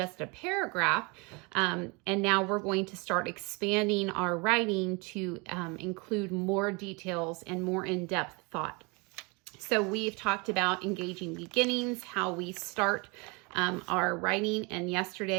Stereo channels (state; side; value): quieter; left; 29.1 dB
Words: a paragraph, and now we're going to start expanding our writing to include more details and more in-depth thought. So we've talked about engaging beginnings, how we start our writing, and